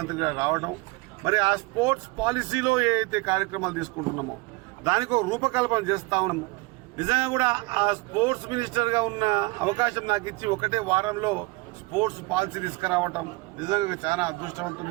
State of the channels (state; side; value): quieter; left; 24.1 dB